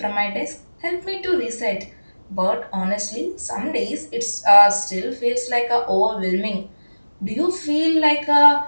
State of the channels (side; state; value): both; inverted; correlation -1.00